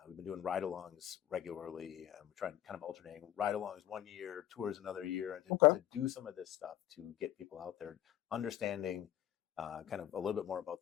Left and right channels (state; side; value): quieter; right; 12.2 dB